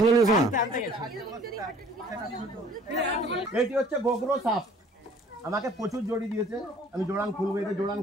নিয়েছো না এটি হচ্ছে গোগ্রো সাপ আমাকে প্রচুর জড়ি দিয়েছে আমি জোড়ান খুলবো এটা জোড়ান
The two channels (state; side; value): normal; both; correlation 0.53